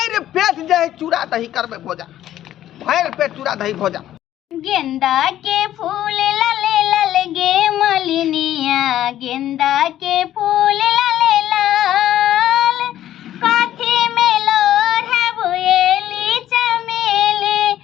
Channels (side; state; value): right; quieter; 12.5 dB